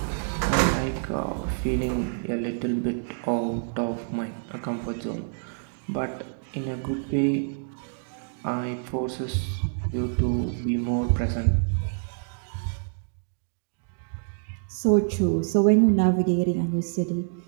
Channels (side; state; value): left; silent; digital silence